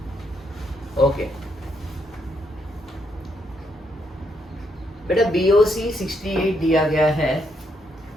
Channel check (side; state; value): both; normal; correlation 0.76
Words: Okay. बेटा BOC 68 दिया गया है.